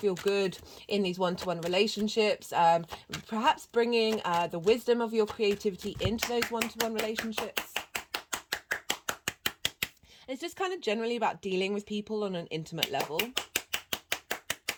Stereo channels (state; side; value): identical; both; correlation 1.00